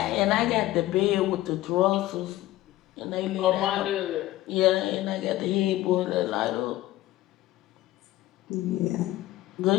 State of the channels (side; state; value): right; quieter; 15.9 dB